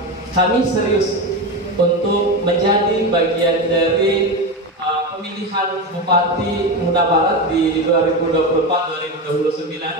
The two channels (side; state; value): both; normal; correlation 0.18